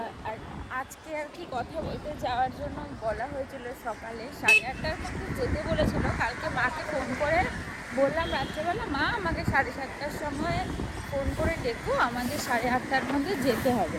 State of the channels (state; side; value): identical; both; correlation 1.00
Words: আজকে আর কি কথা বলতে যাওয়ার জন্য বলা হয়েছিল সকালে 8:30টার মধ্যে যেতে বলেছিল। কালকে মাকে ফোন করে বললাম রাত্রেবেলা, মা আমাকে 7:30টার সময় ফোন করে ডেকো, আমাদের 8:30টার মধ্যে যেতে হবে।